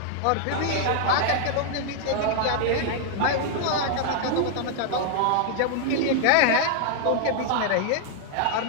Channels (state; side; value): different; both; correlation 0.00